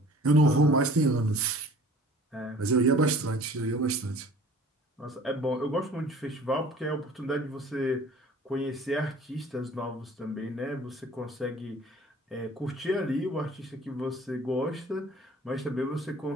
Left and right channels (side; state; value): both; normal; correlation 0.48